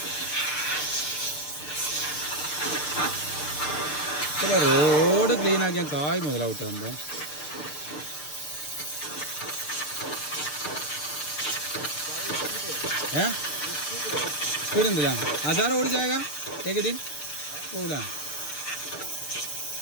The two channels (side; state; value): right; late; 6.7 ms